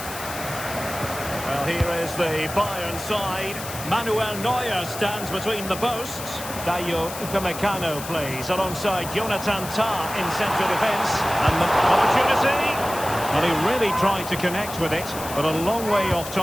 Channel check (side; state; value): left; noise; hiss, 10 dB below the sound